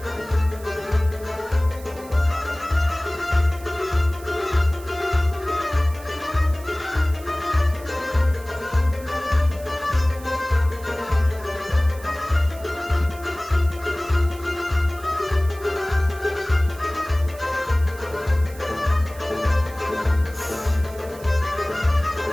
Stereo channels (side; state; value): right; noise; hiss, 20 dB below the sound